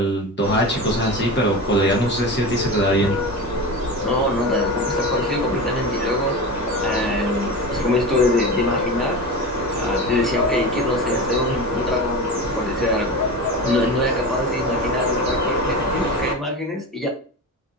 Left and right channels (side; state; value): both; normal; correlation 0.27